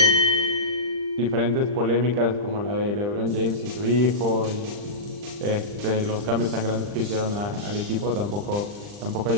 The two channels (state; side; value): late; left; 39 ms